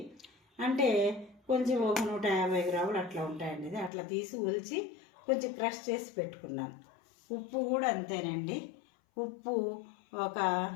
అంటే కొంచెం ఒక 150 గ్రాములు అట్లా ఉంటాయండి. ఇది అట్లా తీసి ఉల్చి కొంచెం క్రష్ చేసి పెట్టుకున్నాను. ఉప్పు కూడా అంతేనండి, ఉప్పు ఒక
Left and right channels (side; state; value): right; drops out; at 3.9 s